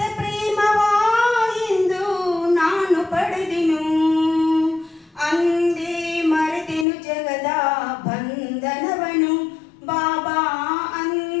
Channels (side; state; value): right; drops out; at 6.9 s